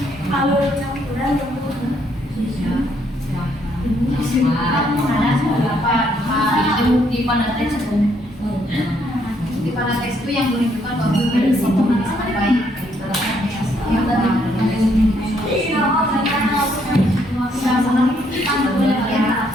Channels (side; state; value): both; normal; correlation 0.71